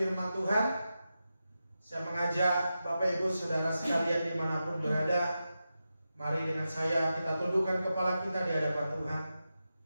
Tuhan, saya mengajak Bapak Ibu Saudara sekalian dimanapun berada, mari dengan saya kita tundukkan kepala kita di hadapan Tuhan.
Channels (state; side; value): inverted; both; correlation -0.91